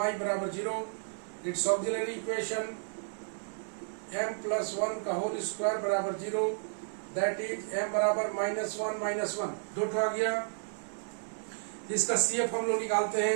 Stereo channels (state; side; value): silent; left; digital silence